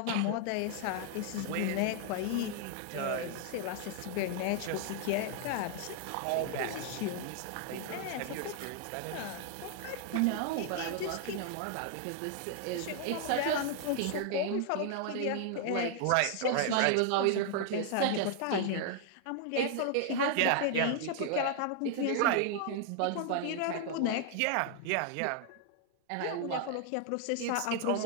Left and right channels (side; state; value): both; different; correlation 0.00